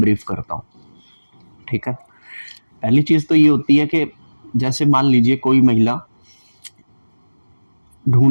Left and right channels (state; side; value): inverted; both; correlation -1.00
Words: करता हूँ। ठीक है, पहली चीज तो ये होती है कि जैसे मान लीजिए कोई महिला